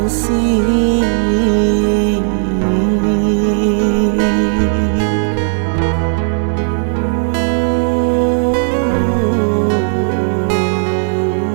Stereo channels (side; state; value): left; silent; 70 dB below the other